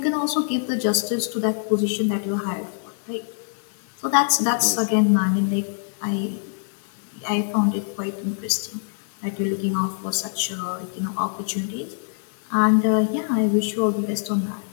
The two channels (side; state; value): right; silent; digital silence